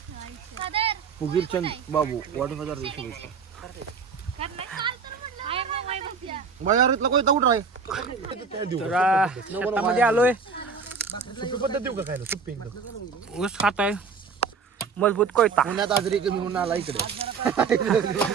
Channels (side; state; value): left; quieter; 5.3 dB